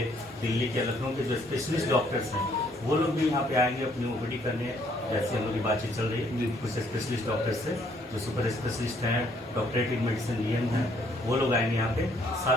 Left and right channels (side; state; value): both; normal; correlation 0.66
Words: दिल्ली के, लखनऊ के जो स्पेशलिस्ट डॉक्टर्स हैं, वो लोग भी यहाँ पे आएंगे अपनी ओपीडी करने। जैसे हम लोग की बातचीत चल रही है कुछ स्पेशलिस्ट डॉक्टर्स से, जो सुपर स्पेशलिस्ट हैं, डॉक्टरेट इन मेडिसिन डीएम हैं, वो लोग आएंगे यहाँ पे।